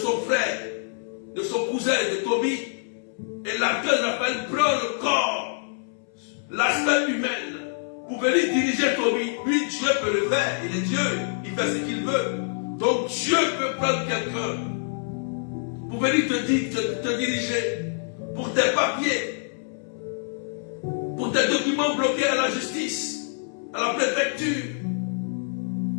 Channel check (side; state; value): right; silent; 61 dB below the other